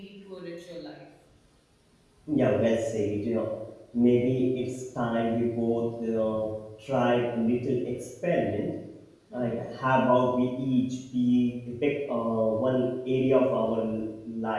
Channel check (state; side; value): identical; both; correlation 1.00